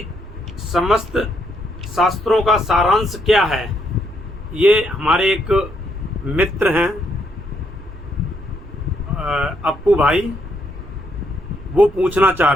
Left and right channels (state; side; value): noise; right; rumble, 17 dB below the sound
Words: समस्त शास्त्रों का सारांश क्या है? ये हमारे एक मित्र हैं अप्पू भाई, वो पूछना चाह